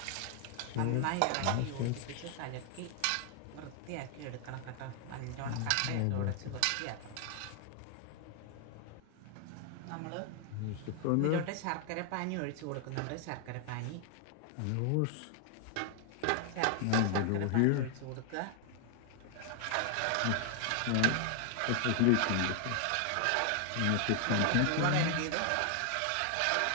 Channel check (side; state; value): both; different; correlation 0.00